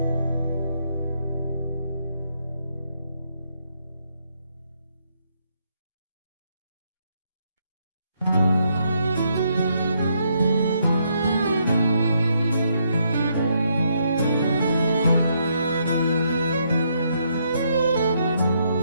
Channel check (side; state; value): both; inverted; correlation -0.74